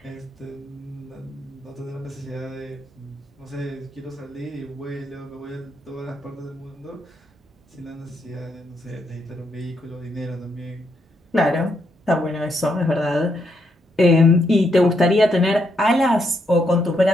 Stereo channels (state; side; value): normal; both; correlation 0.78